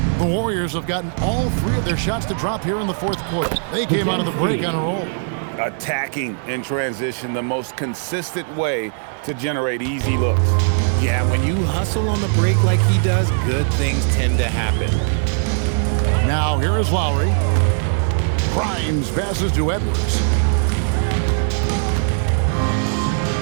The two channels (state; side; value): silent; left; 61 dB below the other